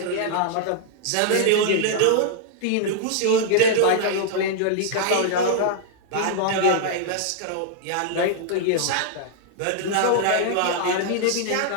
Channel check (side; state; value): both; different; correlation -0.01